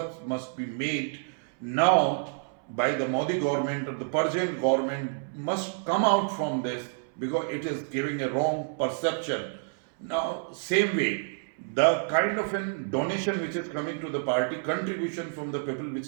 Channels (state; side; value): silent; left; 59 dB below the other